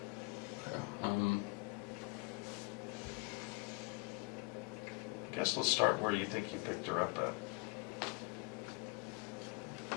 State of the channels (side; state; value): right; quieter; 30.0 dB